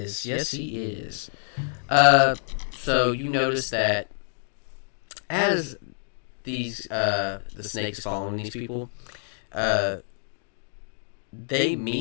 Yes, he is. So you notice that as these the snakes following these people, they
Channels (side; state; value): right; silent; 60 dB below the other